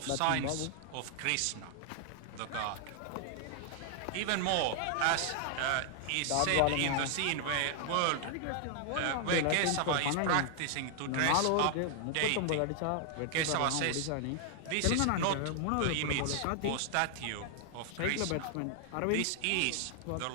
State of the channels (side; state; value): both; different; correlation 0.00